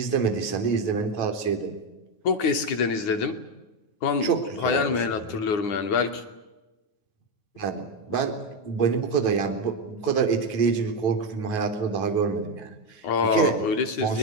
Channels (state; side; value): late; right; 9.8 ms